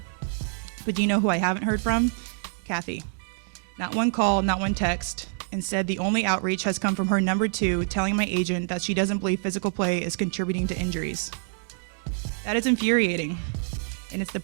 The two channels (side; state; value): left; silent; 61 dB below the other